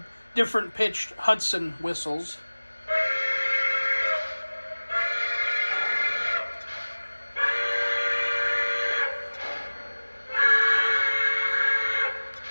different pitched Hudson whistles.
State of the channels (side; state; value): both; inverted; correlation -1.00